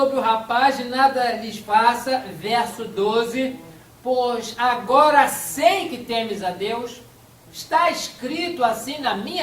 o rapaz e nada lhes faça, verso 12, pois agora sei que temes a Deus. Está escrito assim na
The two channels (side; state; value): both; identical; correlation 1.00